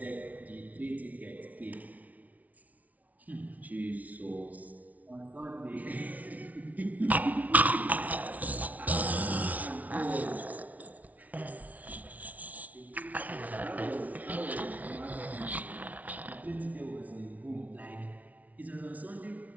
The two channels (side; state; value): left; late; 0.072 ms